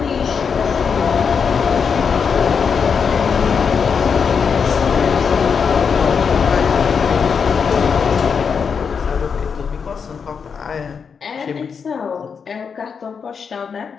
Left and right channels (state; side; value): quieter; right; 6.2 dB